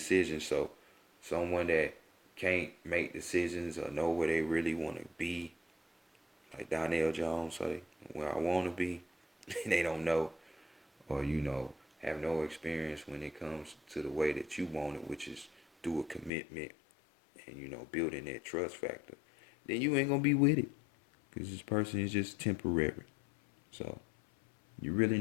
So someone that can't make decisions or know where they really want to be, like Donnell Jones say, where I want to be, they don't know, or have no experience when it comes to the way that you want it, which is through a commitment and building that trust factor. Then you ain't gonna be with it, because this person is just temporary. So you're really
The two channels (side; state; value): right; drops out; at 16.3 s